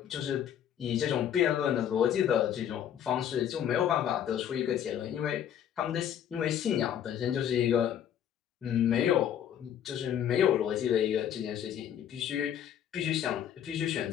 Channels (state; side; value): quieter; right; 9.7 dB